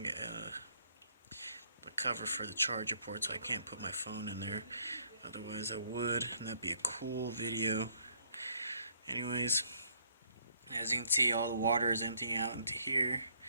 the cover for the charger port, so I can't put my phone in there. Otherwise I would, and that'd be a cool video. Anyways, as you can see, all the water is emptying out into here,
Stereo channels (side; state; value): both; inverted; correlation -0.66